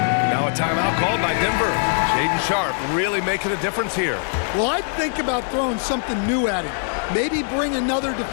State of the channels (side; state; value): right; silent; digital silence